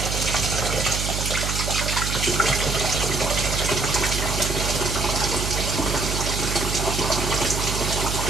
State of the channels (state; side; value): noise; right; hum, 2 dB below the sound